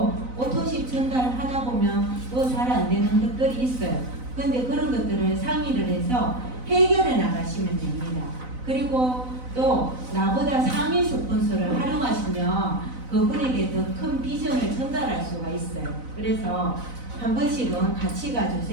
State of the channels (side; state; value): left; late; 4.0 ms